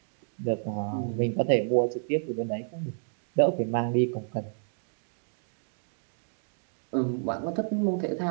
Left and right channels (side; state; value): left; silent; digital silence